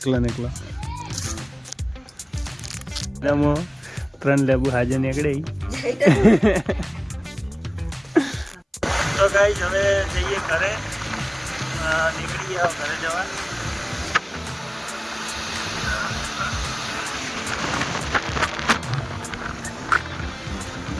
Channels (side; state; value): both; identical; correlation 1.00